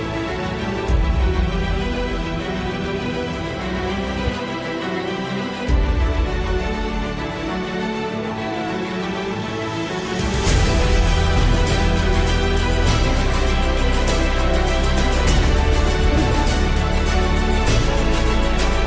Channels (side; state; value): both; identical; correlation 1.00